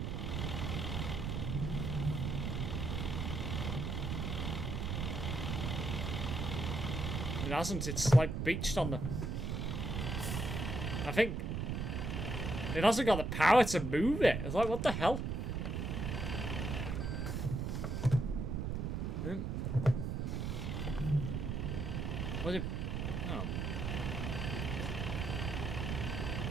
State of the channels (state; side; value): noise; right; rumble, 2 dB below the sound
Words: It hasn't. It's like beached on the... I think... it hasn't got the power to move it. It's like, what the hell? Was it? Oh.